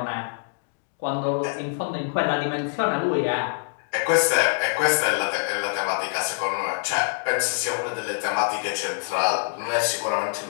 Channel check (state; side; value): silent; right; 62 dB below the other